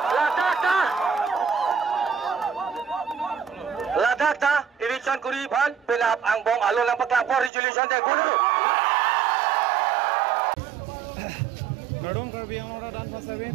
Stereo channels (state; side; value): drops out; left; at 7.5 s